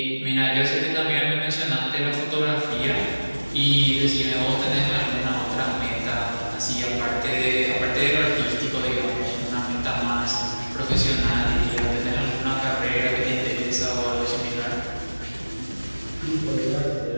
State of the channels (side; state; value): both; inverted; correlation -1.00